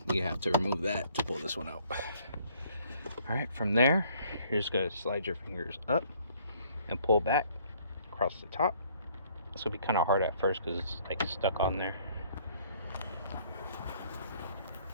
you have to remove that to pull this one out. All right, from there, you're just gonna slide your fingers up and pull back across the top. This will be kind of hard at first because it's like stuck on there.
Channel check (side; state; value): both; inverted; correlation -0.61